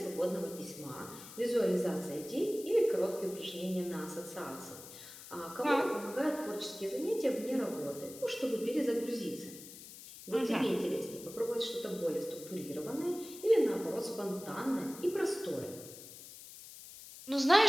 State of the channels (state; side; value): noise; left; hiss, 15 dB below the sound